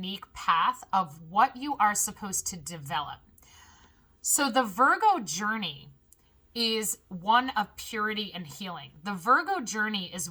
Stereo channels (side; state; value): both; identical; correlation 1.00